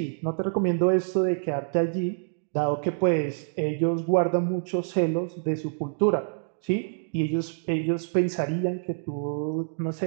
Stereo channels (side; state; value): left; silent; digital silence